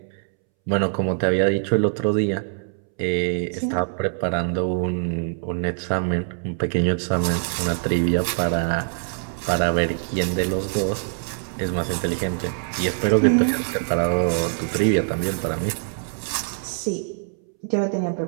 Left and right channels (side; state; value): left; silent; 63 dB below the other